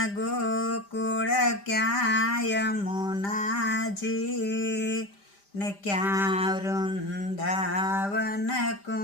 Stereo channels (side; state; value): right; late; 5.0 ms